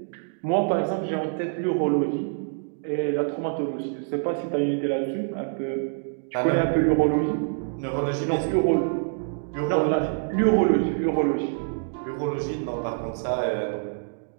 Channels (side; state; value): left; silent; digital silence